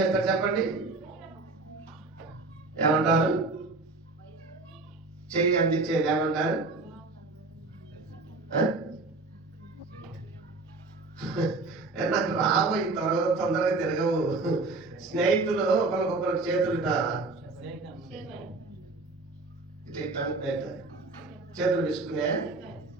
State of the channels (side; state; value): left; quieter; 3.6 dB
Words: చెప్పండి, ఏమంటారు? చెయ్యి అందించేది ఏమంటారు? నాకు రాబోయి తర్వాత తొందరగా తిరగవు. స్నేహితులు ఒకరికొకరు చేతులు చేతులు విసుకునే